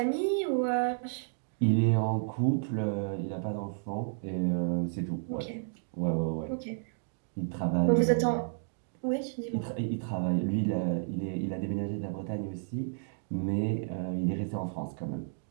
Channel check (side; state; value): left; silent; digital silence